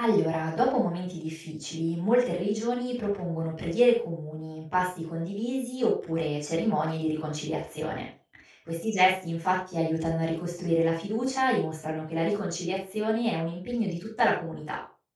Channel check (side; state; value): both; identical; correlation 1.00